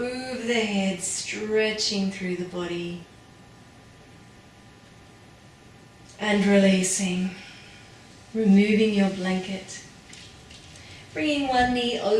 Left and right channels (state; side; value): identical; both; correlation 1.00